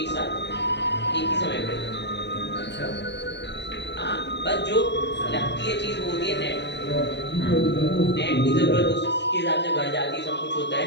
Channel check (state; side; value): late; right; 0.50 ms